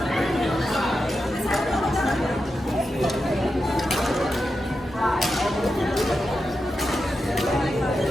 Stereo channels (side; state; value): both; normal; correlation 0.89